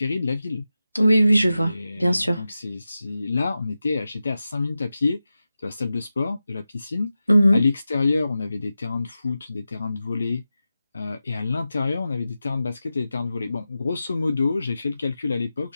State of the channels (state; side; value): inverted; both; correlation -0.92